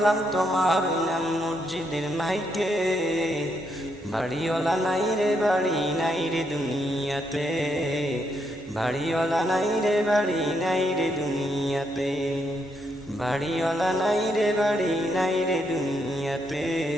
তোমারই নাম মসজিদের মাইকে। বাড়িওয়ালা নাই রে বাড়ি নাই রে দুনিয়াতে, বাড়িওয়ালা নাই রে বাড়ি নাই রে দুনিয়াতে। বাড়িওয়ালা নাই রে বাড়ি নাই রে দুনিয়াতে,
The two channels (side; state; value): both; normal; correlation 0.78